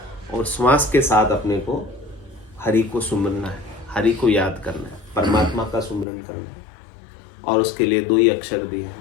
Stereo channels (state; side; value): drops out; right; at 6.1 s